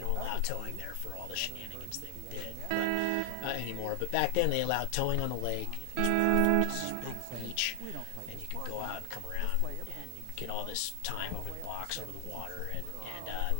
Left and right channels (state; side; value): different; both; correlation 0.00